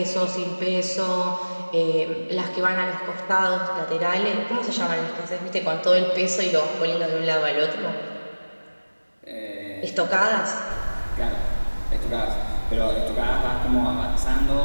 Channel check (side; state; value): both; inverted; correlation -1.00